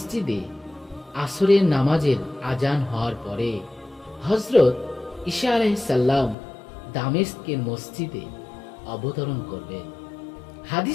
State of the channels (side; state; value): right; drops out; at 6.4 s